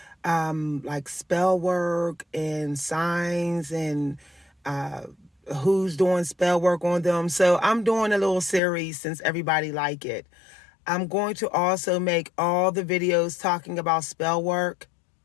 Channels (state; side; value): drops out; right; at 8.6 s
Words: like spell work and signs and who's doing spell work on them. So I'm doing a little series since everybody like it. I'm going to also make all the videos talking about spell work